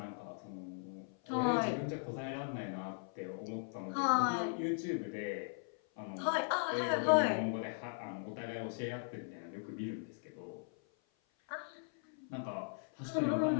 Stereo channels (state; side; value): silent; right; 52 dB below the other